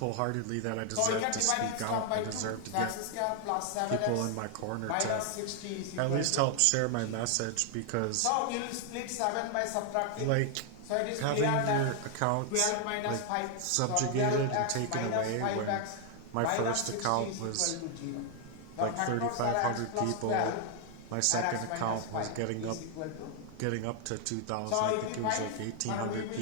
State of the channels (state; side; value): different; both; correlation 0.00